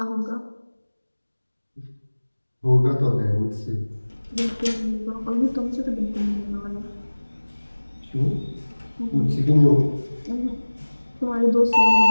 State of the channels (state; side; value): inverted; both; correlation -1.00